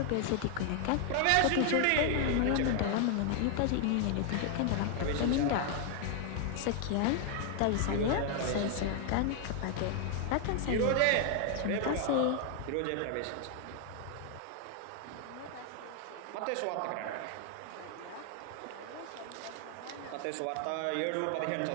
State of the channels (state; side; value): different; both; correlation 0.00